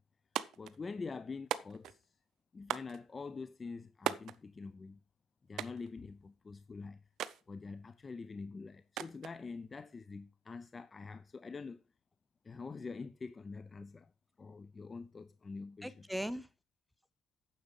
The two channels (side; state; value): both; normal; correlation 0.73